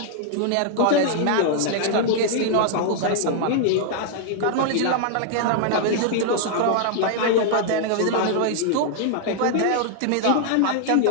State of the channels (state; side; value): different; both; correlation 0.00